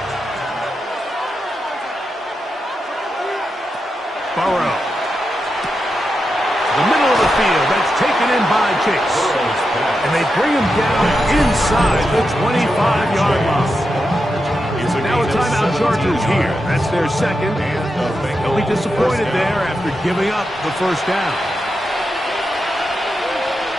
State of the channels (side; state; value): both; normal; correlation 0.88